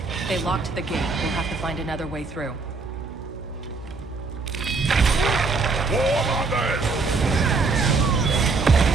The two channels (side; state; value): left; quieter; 4.1 dB